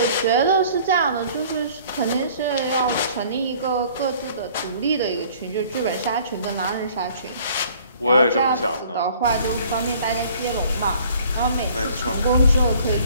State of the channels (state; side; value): inverted; both; correlation -0.54